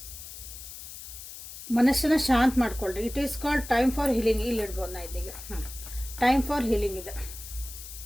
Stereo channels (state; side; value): noise; left; hiss, 12 dB below the sound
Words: ಮನಸ್ಸನ್ನ ಶಾಂತ ಮಾಡ್ಕೊಳ್ರಿ. It is called time for healing. ಇಲ್ಲಿ ಇಡ್ಬೋದು ನಾ ಇದೀಗ. ಟೈಮ್ ಫಾರ್ ಹೀಲಿಂಗ್ ಇದೆ.